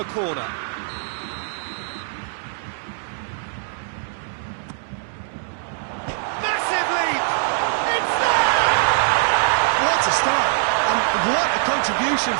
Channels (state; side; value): silent; left; 64 dB below the other